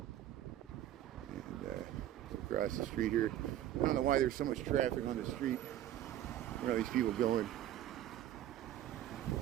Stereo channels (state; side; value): quieter; left; 12.3 dB